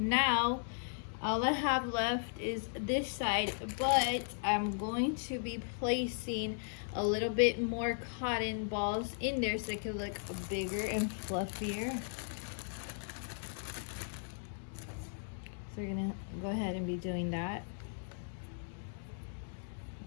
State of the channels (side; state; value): right; silent; digital silence